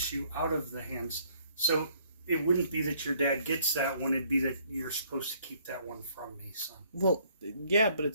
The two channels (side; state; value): both; inverted; correlation -0.63